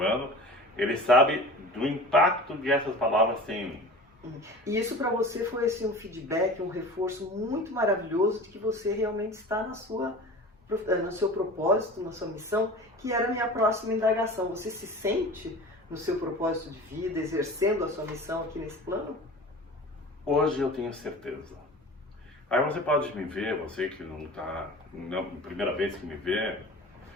ele sabe do impacto que essas palavras têm em mim. E isso para você foi assim, um feedback, um reforço muito maravilhoso de que você realmente está no seu propósito, na sua missão, que era a minha próxima indagação. Você se sente no seu propósito de vida, exercendo a sua missão aqui nesse plano? Hoje eu tenho certeza. Aí você pode me ver, você que não está, primeira vez que me vê,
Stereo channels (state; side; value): normal; both; correlation 0.38